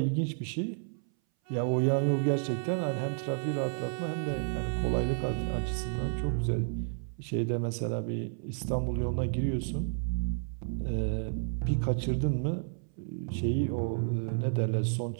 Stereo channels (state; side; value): silent; left; 57 dB below the other